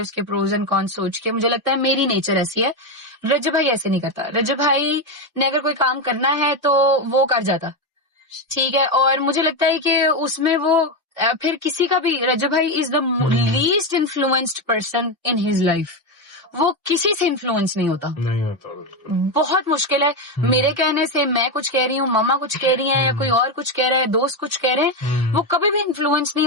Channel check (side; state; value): both; normal; correlation 0.10